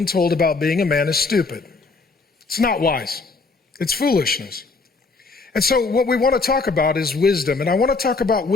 told about being a man is stupid. It's not wise. It's foolishness. And so what we want to talk about is wisdom. And I want to talk about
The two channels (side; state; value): right; quieter; 4.0 dB